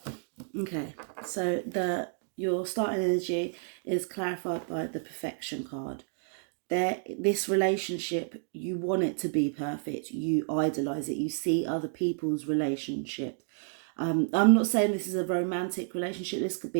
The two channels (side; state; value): left; silent; digital silence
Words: Okay, so your starting energy is clarified by the perfection card. This relationship, you want it to be perfect. You idolize it. You see other people's relationship. I'm not saying this is a romantic relationship. This could